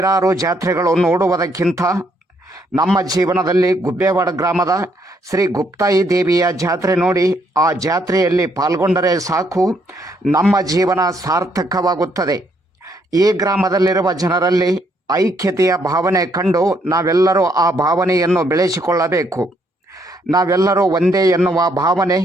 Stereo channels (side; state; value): both; normal; correlation 0.71